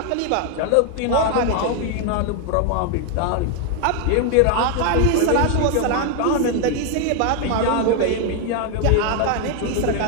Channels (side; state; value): both; different; correlation 0.01